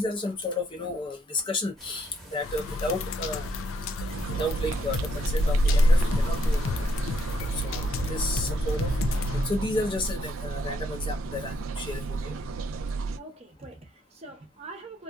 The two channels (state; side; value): normal; both; correlation 0.73